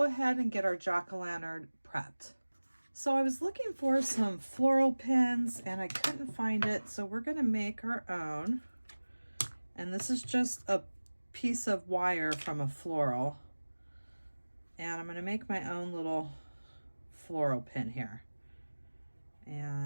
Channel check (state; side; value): inverted; both; correlation -1.00